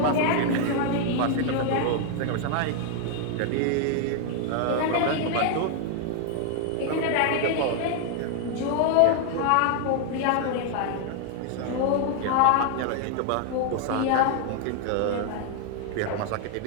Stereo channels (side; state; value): both; different; correlation 0.00